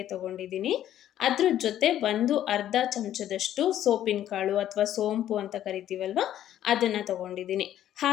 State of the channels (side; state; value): right; quieter; 11.7 dB